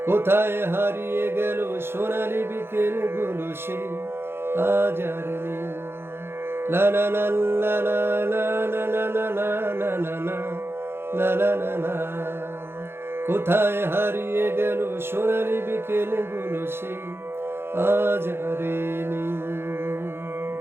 কোথায় হারিয়ে গেল সোনালি বিকেলগুলো সে আজ আর নেই। লা লা লা লা লা লা লা লা লা লা লা লা লা লা লা লা। কোথায় হারিয়ে গেল সোনালি বিকেলগুলো সে আজ আর নেই।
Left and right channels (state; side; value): late; left; 0.11 ms